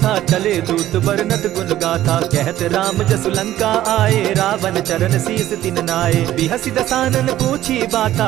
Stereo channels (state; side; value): quieter; left; 13.6 dB